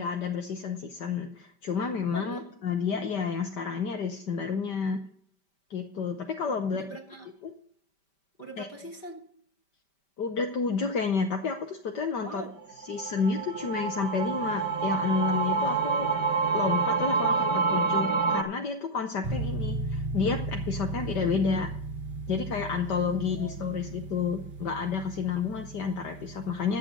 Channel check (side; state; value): right; late; 5.1 ms